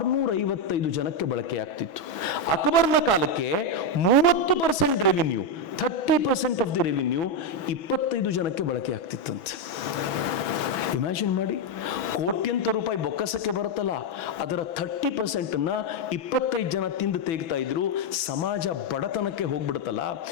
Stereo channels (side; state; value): right; late; 6.1 ms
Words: ಜನಕ್ಕೆ ಬಳಕೆ ಆಗ್ತಿತ್ತು. ಅಕ್ಬರ್ನ ಕಾಲಕ್ಕೆ 30% ರೆವಿನ್ಯೂ, 30% ಆಫ್ ದಿ ರೆವಿನ್ಯೂ 25 ಜನಕ್ಕೆ ಬಳಕೆ ಆಗ್ತಿತ್ತಂತೆ. ಇಮ್ಯಾಜಿನ್ ಮಾಡಿ, ಕೋಟ್ಯಂತರ ರೂಪಾಯಿ ಬೊಕ್ಕಸಕ್ಕೆ ಬರುತ್ತಲ್ಲ, ಅದರ 30%ನ್ನ 25 ಜನ ತಿಂದು ತೆಗ್ತಾ ಇದ್ರು. ಸಮಾಜ ಬಡತನಕ್ಕೆ ಹೋಗ್ಬಿಡುತ್ತಲ್ಲ.